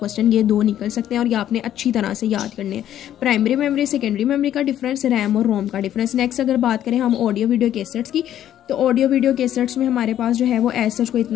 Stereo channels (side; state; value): right; quieter; 11.3 dB